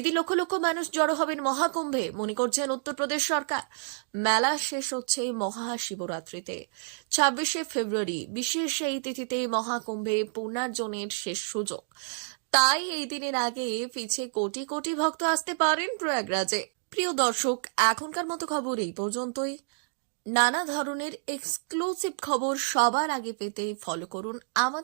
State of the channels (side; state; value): left; silent; digital silence